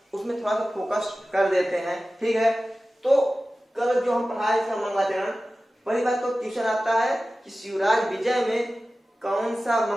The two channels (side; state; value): both; normal; correlation 0.96